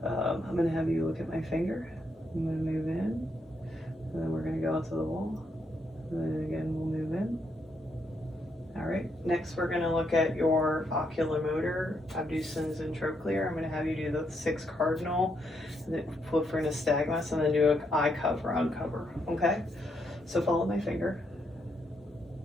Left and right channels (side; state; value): both; normal; correlation 0.77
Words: I'm going to have you look at my finger. I'm going to move in, and then we're going to go out to the wall, and then again we'll move in. All right, next we're going to look at your oculomotor, abducens and trochlear. I'm going to have you do the 6 cardinal, and then flip for nystagmus, and then do an eye cover, uncover, okay? So follow my finger.